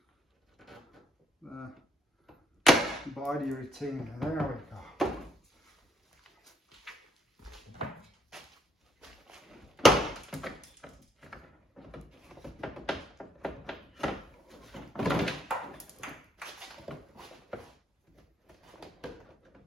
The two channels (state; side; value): normal; both; correlation 0.71